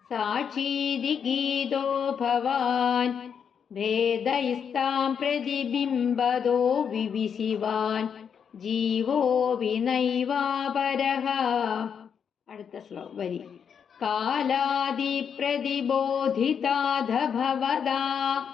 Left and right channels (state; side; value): quieter; right; 7.3 dB